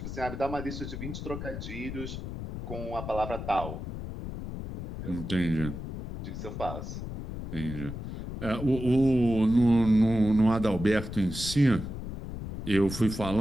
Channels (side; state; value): left; noise; rumble, 7 dB below the sound